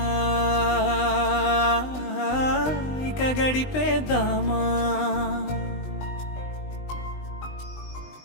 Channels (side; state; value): right; late; 20 ms